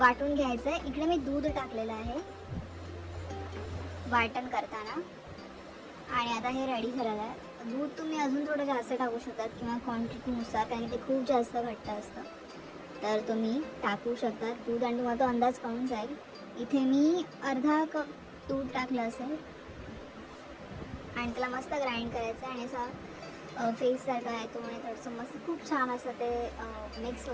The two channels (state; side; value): identical; both; correlation 1.00